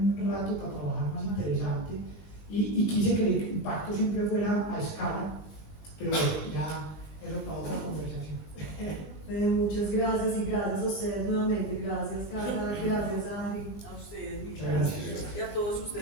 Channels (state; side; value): late; right; 19 ms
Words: rato para trabajar más interesante. Y quise que el impacto siempre fuera a escala. Pero bueno, ya eso para otra conversación. Muchas gracias y gracias a ustedes nuevamente. Gracias, Carla. Gracias, Ari. A ustedes, Muchas gracias. Y a todos